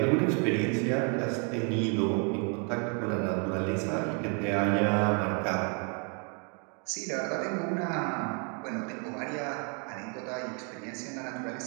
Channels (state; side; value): quieter; left; 37.6 dB